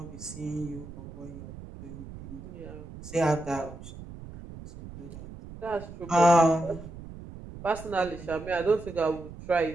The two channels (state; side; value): noise; right; rumble, 14 dB below the sound